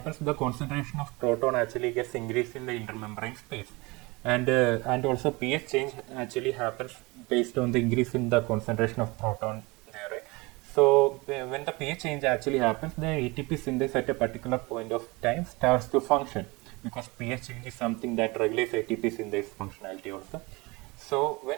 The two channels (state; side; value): quieter; left; 24.9 dB